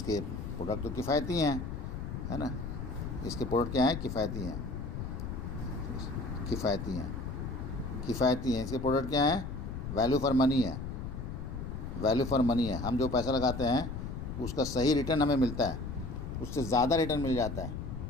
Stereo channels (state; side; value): noise; left; rumble, 6 dB below the sound